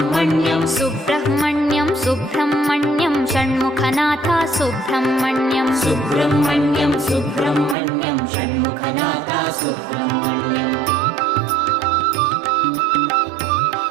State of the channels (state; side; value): drops out; left; at 7.8 s